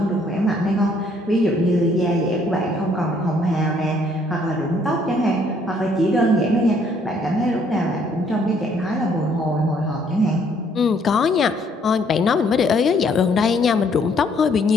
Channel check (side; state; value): both; normal; correlation 0.66